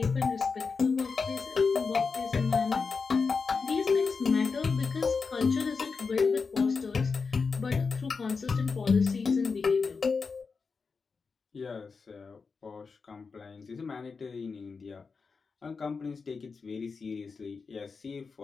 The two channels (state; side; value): quieter; right; 4.9 dB